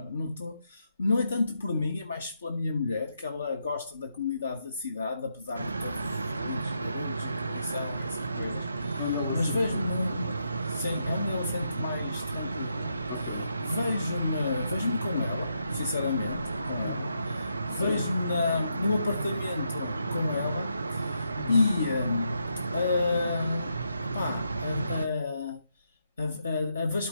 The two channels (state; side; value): inverted; both; correlation -0.80